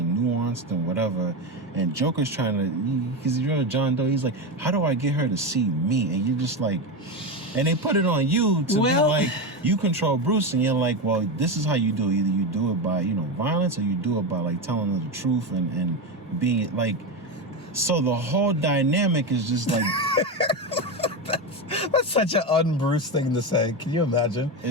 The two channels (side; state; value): both; normal; correlation 0.16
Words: nuanced and whatever, and Joker's trying to, because you're John Doe, he's like, how do I get her to see me? And you're just like, and they put it on you to be like, you control Bruce, and you're like, well, this is how you do it. Either you do it by, violence, or you do it by like telling her the truth and being like, so the whole dynamic is just like That's such an un-Bruce thing to say. Can you imagine?